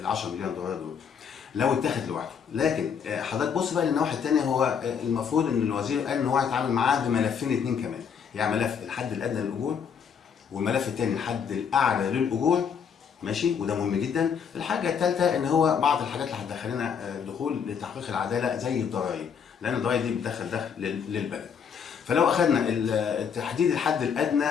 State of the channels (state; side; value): quieter; right; 7.1 dB